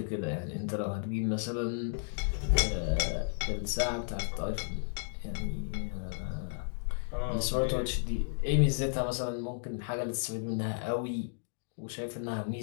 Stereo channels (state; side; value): silent; right; digital silence